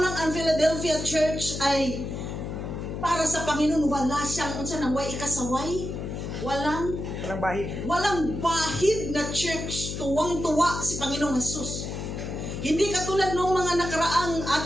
ang Philadelphia church ay para sa Panginoon, wala siyang ikasaway. Walang bahid na church. Tuwang-tuwa si Panginoong Jesus. Hindi katulad ng mga nakaraang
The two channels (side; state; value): left; noise; hum, 6 dB below the sound